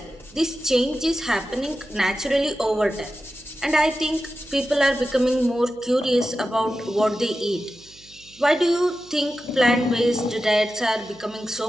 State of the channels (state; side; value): noise; right; hum, 26 dB below the sound